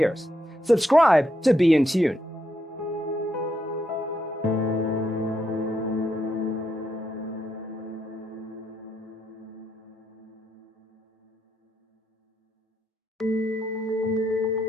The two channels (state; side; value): normal; both; correlation 0.79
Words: Subscribe to be in tune.